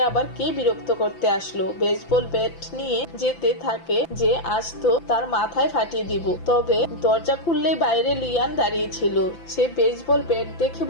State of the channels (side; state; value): right; late; 5.9 ms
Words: আবার কে বিরক্ত করতে আসলো। বেসবল ব্যাট নিয়ে যেতে থাকে যে আজ তো তার মাথায় ফাটিয়ে দিব। তবে দরজা খুললেই বাইরে লিয়ান দাঁড়িয়ে ছিল। সে বেসবল ব্যাট দেখে